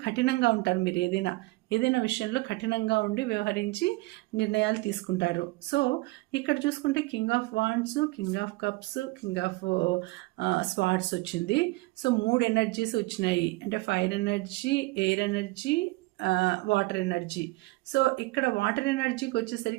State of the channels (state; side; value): quieter; left; 22.2 dB